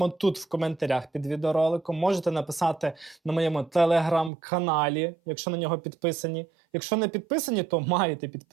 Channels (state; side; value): drops out; left; at 4.3 s